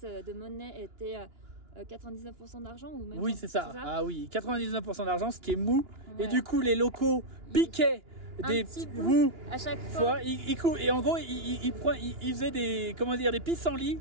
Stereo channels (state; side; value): late; left; 2.9 ms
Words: de monnaie était 99% d'argent ou même. Oui, c'est ça. Ah oui, 99% d'argent, ce qui est mou. Ouais. Et du coup, les locaux piquaient des petits bouts à chaque fois. Et en gros, il faisait des, comment dire, des pissenlits.